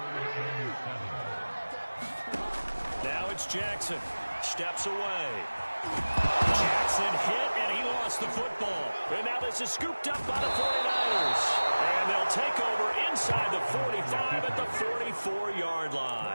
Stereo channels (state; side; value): inverted; both; correlation -1.00